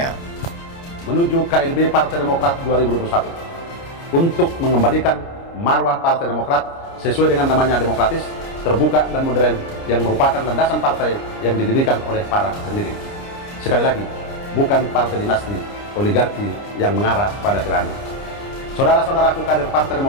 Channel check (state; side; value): late; right; 29 ms